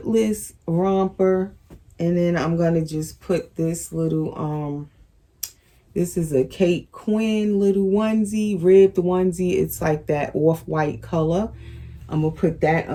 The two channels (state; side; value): identical; both; correlation 1.00